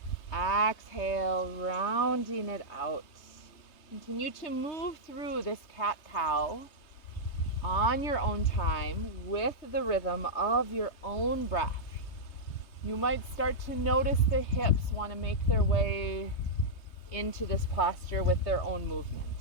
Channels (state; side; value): late; right; 3.2 ms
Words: Exhale, rounding it out. Continue to move through this cat-cow on your own time with the rhythm of your own breath. You might start to notice the hips want to make their way into this posture with their own movement.